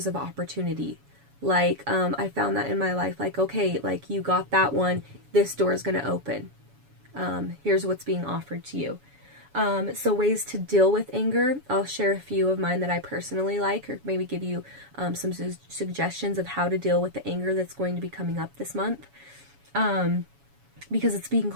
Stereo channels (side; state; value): left; late; 7.1 ms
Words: of opportunity. Like, I found that in my life, like, okay, like, you got that one, this door is going to open. Here's what's being offered to you. So ways to deal with anger, I'll share a few of mine that I personally like, or maybe give you some suggestions of how to deal with the anger that's going to be coming up this month, because it's being